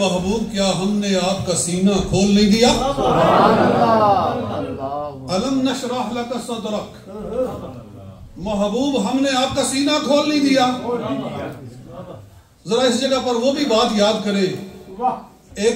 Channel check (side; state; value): both; identical; correlation 1.00